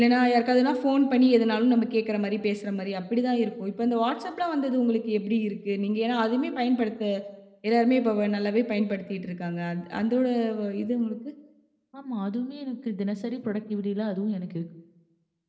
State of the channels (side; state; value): both; identical; correlation 1.00